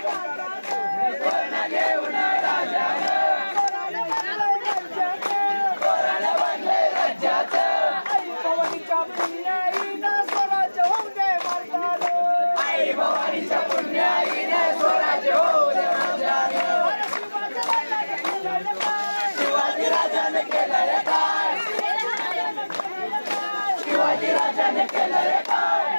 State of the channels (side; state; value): both; inverted; correlation -1.00